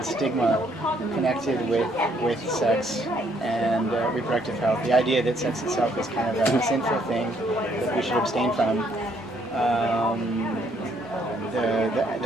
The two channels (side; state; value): both; normal; correlation 0.68